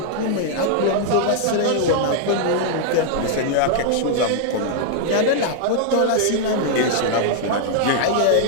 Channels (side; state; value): both; different; correlation 0.00